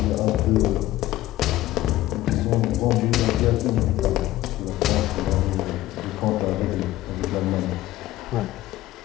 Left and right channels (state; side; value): quieter; right; 15.7 dB